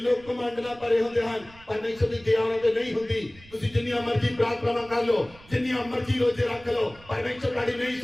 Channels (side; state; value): right; noise; rumble, 23 dB below the sound